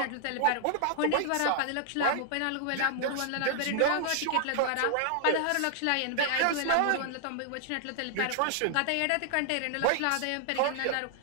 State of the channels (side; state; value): both; different; correlation -0.01